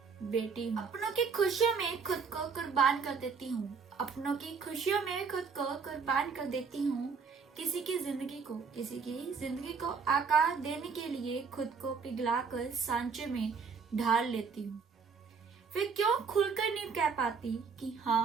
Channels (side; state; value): left; quieter; 5.4 dB